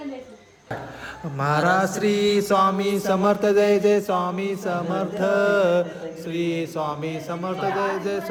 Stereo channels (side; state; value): both; identical; correlation 1.00